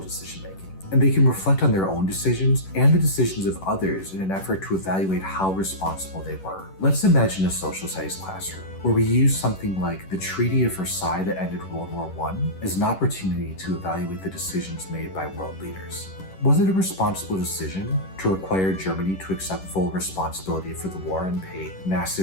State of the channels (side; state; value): right; late; 11 ms